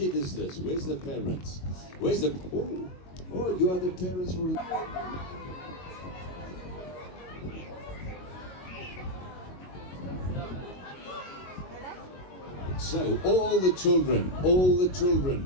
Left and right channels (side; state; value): right; late; 22 ms